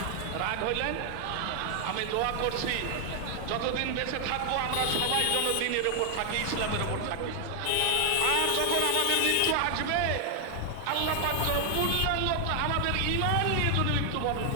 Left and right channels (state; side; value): different; both; correlation 0.00